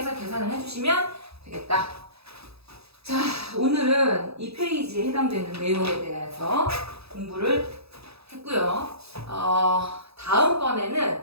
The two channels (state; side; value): late; left; 0.78 ms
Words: 계산을 해주시면 되겠다. 자, 오늘은 이 페이지에 해당되는 내용에 대해서 공부를 했고요. 다음번에는